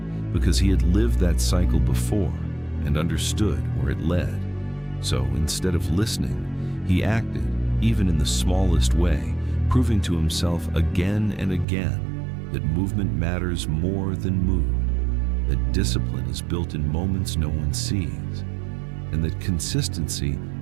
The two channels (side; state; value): left; drops out; at 11.7 s